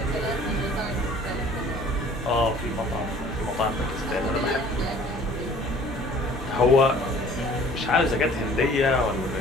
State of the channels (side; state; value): both; normal; correlation 0.51